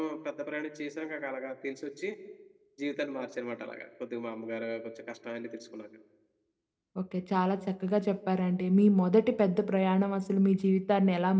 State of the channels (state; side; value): identical; both; correlation 1.00